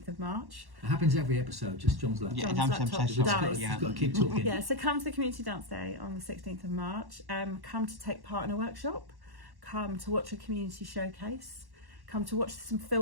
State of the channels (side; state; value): left; late; 1.1 ms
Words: of March. It happens every episode, just John's laptop. Yeah, John's John's laptop laptop. dies. You've got to keep talking. Yeah, so come to the Community Dance Day on the 16th of March. Come to take part in a workshop. Come to watch a community showcase. Come to watch some